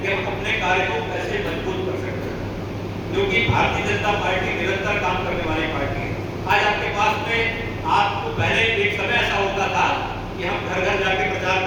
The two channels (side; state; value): both; identical; correlation 1.00